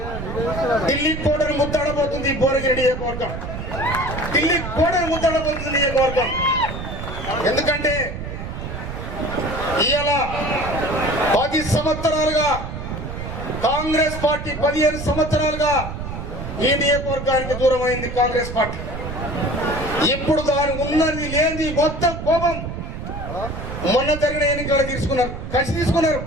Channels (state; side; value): noise; right; rumble, 7 dB below the sound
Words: ఢిల్లీ కోటను ముద్దాడబోతుంది. భువనగిరి నియోజకవర్గం ఢిల్లీ కోటను ముద్దాడబోతుంది నియోజకవర్గం. ఎందుకంటే ఇవాళ 10 సంవత్సరాలుగా కాంగ్రెస్ పార్టీ 15 సంవత్సరాలుగా ఈ నియోజకవర్గానికి దూరమైంది కాంగ్రెస్ పార్టీ. ఇప్పుడు దాని ఉన్నది లేని మొత్తం కోపం మొన్న జరిగిన ఎన్నికలు తీసుకున్నారు, కసి తీసుకున్నారు.